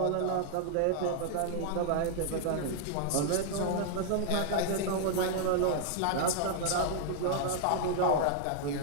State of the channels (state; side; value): different; both; correlation -0.01